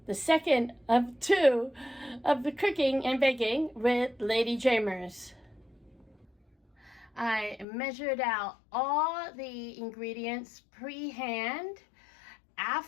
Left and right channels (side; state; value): right; drops out; at 7.7 s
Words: the second of two of the cooking and baking with LadyJamers. I measured out all the ingredients pre-hand.